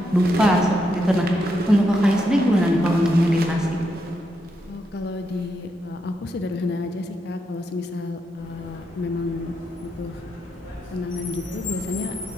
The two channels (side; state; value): both; normal; correlation 0.81